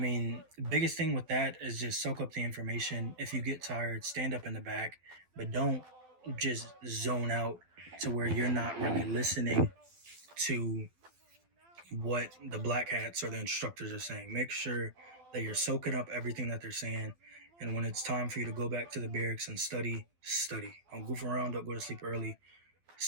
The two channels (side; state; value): left; late; 12 ms